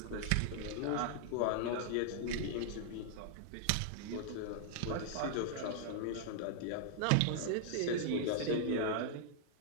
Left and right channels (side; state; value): both; different; correlation -0.01